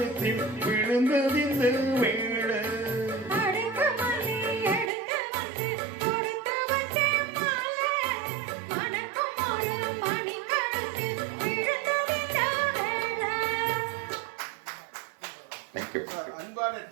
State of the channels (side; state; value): left; drops out; at 4.9 s